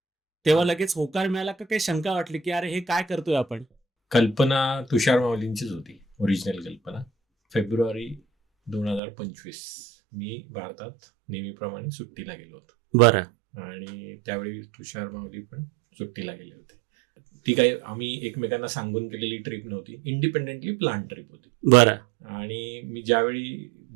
तेव्हा लगेच होकार मिळाला का काही शंका वाटली की अरे हे काय करतोय आपण? कल्पना तुषार माऊलींचीच होती, ओरिजिनल कल्पना. फेब्रुवारी 2025 मी भारतात नेहमीप्रमाणे सुट्टीला गेलो होतो. बरं. आणि त्यावेळी तुषार माऊली पण सुट्टीला गेले होते. ती काही आम्ही एकमेकांना सांगून केलेली ट्रिप नव्हती, इंडिपेंडेंटली प्लॅन ट्रिप होती. बरं. आणि मी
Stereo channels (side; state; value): left; drops out; at 9.0 s